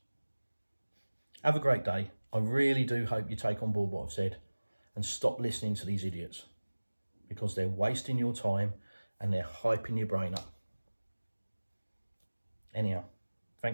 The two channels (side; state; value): both; inverted; correlation -1.00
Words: Have a great day. I really do hope you take on board what I've said and stop listening to these idiots, because they're wasting your time and they're hyping your brain up. Anyhow,